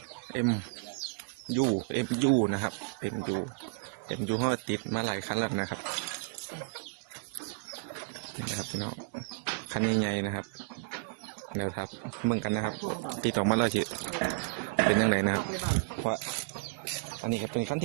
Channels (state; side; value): quieter; left; 32.8 dB